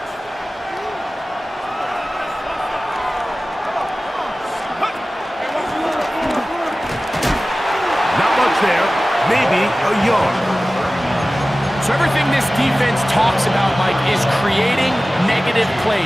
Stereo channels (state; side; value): normal; both; correlation 0.97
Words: Maybe a yard. So everything this defense talks about, Mike, is creating negative